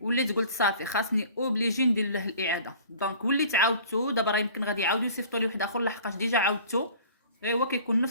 قلت صافي خاصني اوبليجي ندير له الاعاده. دونك وليت عاودتو دابا راه يمكن غادي يعاودوا يصيفطوا لي واحد اخر لحقاش ديجا عاودتو، غير هو كيكون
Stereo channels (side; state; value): both; inverted; correlation -0.47